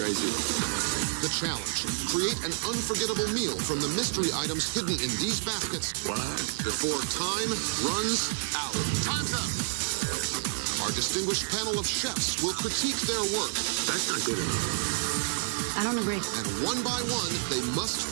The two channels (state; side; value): silent; left; digital silence